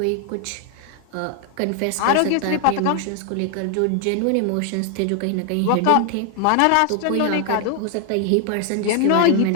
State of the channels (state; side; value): different; both; correlation 0.00